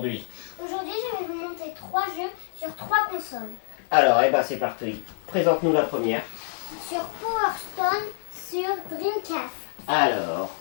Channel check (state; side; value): silent; right; digital silence